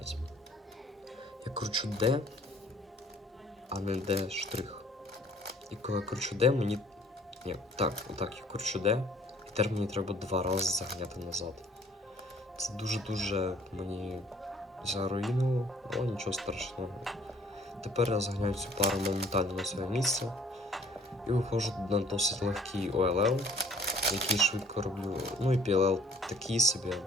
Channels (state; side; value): normal; both; correlation 0.57